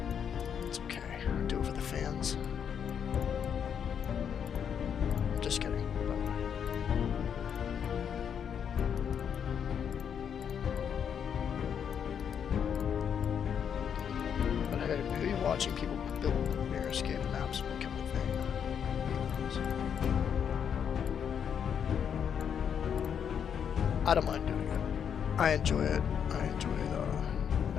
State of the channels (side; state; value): right; quieter; 7.9 dB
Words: it's okay. I'll do it for the fans. Just kidding. But hey, maybe watching people build Mirrorscape maps will become a thing. I don't mind doing it. I enjoy it. I enjoy the